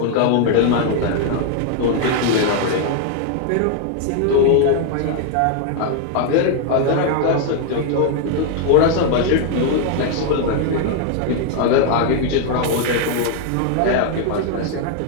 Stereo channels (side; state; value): both; different; correlation 0.00